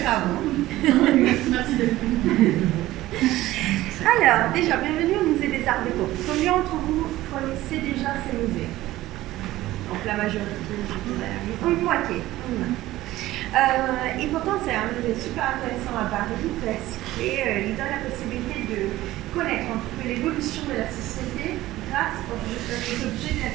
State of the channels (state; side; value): quieter; left; 16.3 dB